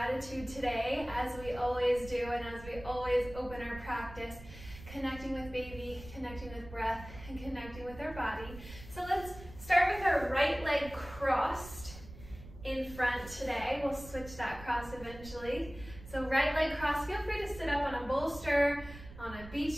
today, as we always do and as we always open our practice, connecting with baby, connecting with breath, and connecting with our body. So let's start with our right leg crossed in front today. We'll switch that cross eventually. So right leg crossed, feel free to sit up on a bolster, on a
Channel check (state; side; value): noise; right; rumble, 15 dB below the sound